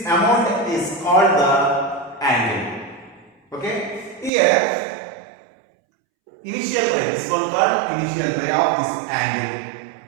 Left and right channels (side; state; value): left; drops out; at 4.3 s